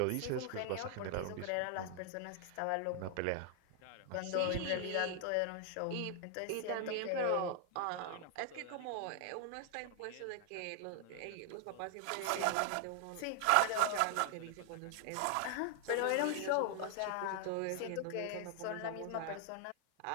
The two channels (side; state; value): both; different; correlation 0.00